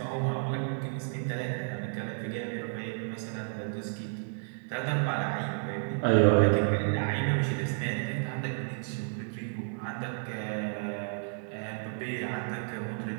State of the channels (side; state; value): left; silent; 57 dB below the other